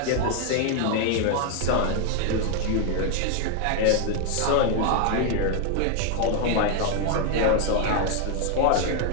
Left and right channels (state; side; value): different; both; correlation 0.00